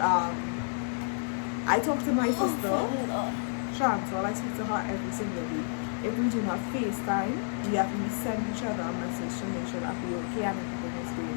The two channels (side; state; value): right; silent; digital silence